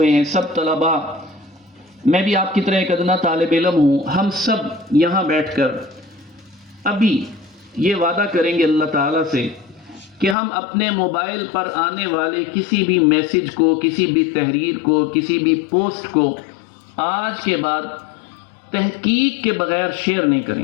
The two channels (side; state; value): right; drops out; at 10.4 s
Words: ہیں، سب طلباء، میں بھی آپ کی طرح ایک ادنا طالب علم ہوں، ہم سب یہاں بیٹھ کر ابھی یہ وعدہ کریں گے اللہ تعالیٰ سے کہ ہم اپنے موبائل پر آنے والے کسی بھی میسج کو، کسی بھی تحریر کو، کسی بھی پوسٹ کو آج کے بعد تحقیق کے بغیر شیئر نہیں